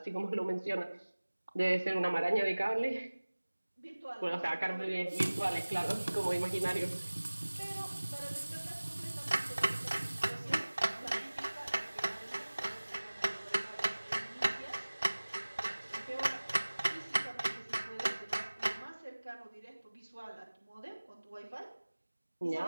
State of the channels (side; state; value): both; inverted; correlation -1.00